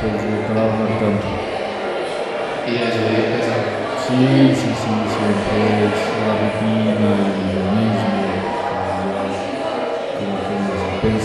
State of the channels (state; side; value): identical; both; correlation 1.00